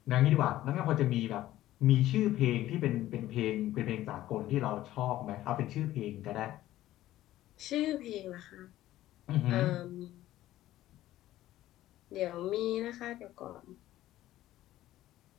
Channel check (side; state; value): right; quieter; 14.6 dB